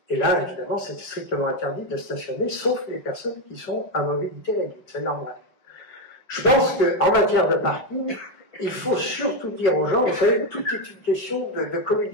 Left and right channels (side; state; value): right; late; 5.4 ms